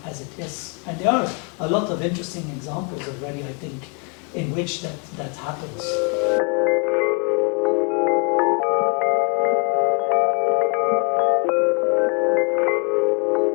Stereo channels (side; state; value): right; quieter; 36.4 dB